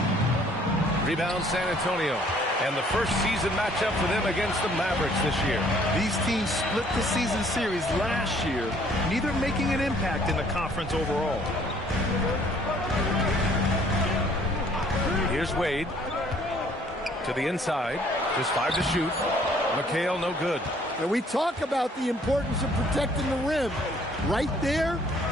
Rebound San Antonio. And the first season matchup for them against the Mavericks this year. These teams split the season series last year, neither making an impact in the conference overall. Here's Wade. To the inside. Just 5 to shoot. McHale no good. And we talk about the importance of protecting the rim. Right there,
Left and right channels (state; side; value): normal; both; correlation 0.60